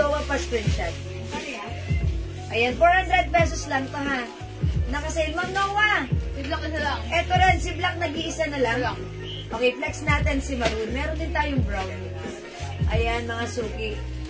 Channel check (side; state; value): both; identical; correlation 1.00